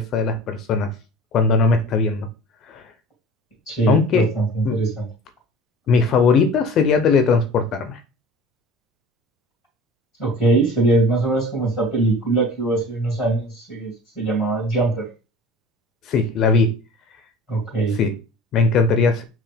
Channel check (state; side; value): normal; both; correlation 0.42